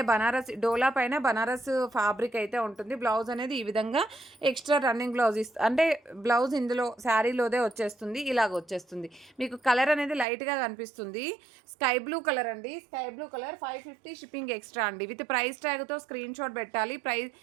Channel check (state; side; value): drops out; left; at 10.2 s